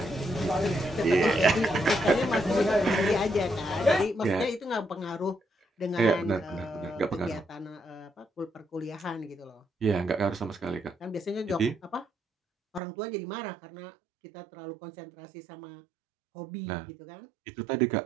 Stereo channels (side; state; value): left; drops out; at 12.8 s